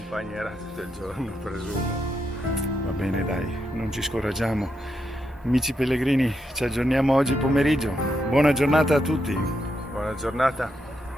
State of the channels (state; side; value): normal; both; correlation 0.82